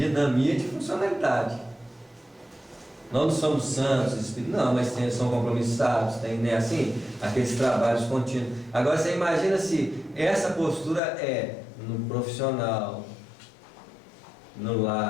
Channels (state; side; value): drops out; right; at 11.0 s